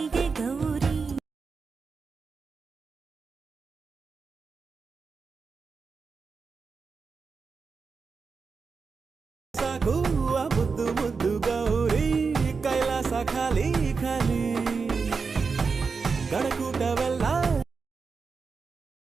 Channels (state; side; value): quieter; left; 5.0 dB